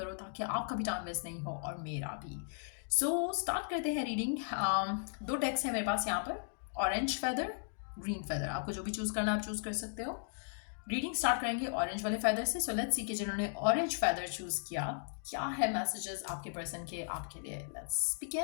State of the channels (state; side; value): silent; right; digital silence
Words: ताकि आपका भी टाइम वेस्ट नहीं हो और मेरा भी। सो स्टार्ट करते हैं रीडिंग। दो टेक्स्ट है मेरे पास यहाँ पर, ऑरेंज फेदर, ग्रीन फेदर, आपको जो भी चूज करना आप चूज कर सकते हो। रीडिंग स्टार्ट करेंगे ऑरेंज वाले फेदर से। सो लेट्स सी कि जिन्होंने ऑरेंज फेदर चूज किया क्या है मैसेजेस आपके पर्सन के आपके लिए। Let's